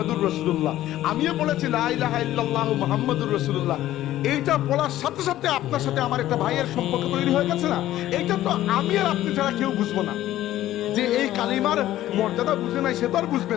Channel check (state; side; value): quieter; right; 14.0 dB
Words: রাসূলুল্লাহ, আমিও পড়েছি লা ইলাহা ইল্লাল্লাহু মুহাম্মাদুর রাসূলুল্লাহ। এইটা পড়ার সাথে সাথে আপনার সাথে আমার একটা ভাইয়ের সম্পর্ক তৈরি হয়ে গেছে না? এইটা তো আমি আর আপনি ছাড়া কেউ বুঝবো না। যে এই কালিমার মর্যাদা বুঝে নাই, সে তো আর বুঝবে